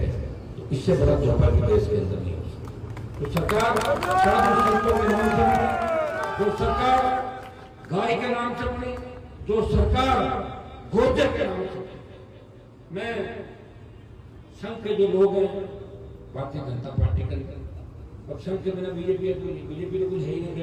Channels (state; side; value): identical; both; correlation 1.00